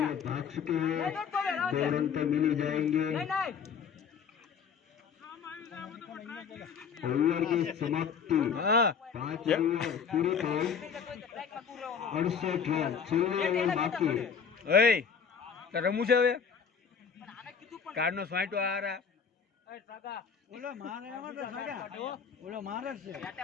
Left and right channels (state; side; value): quieter; right; 6.5 dB